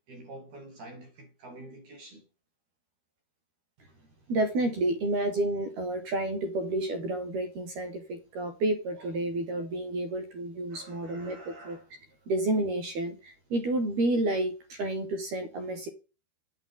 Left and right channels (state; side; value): late; left; 13 ms